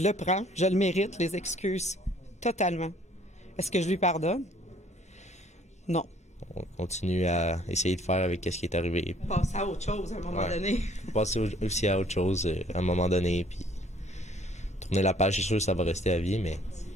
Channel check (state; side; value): normal; both; correlation 0.59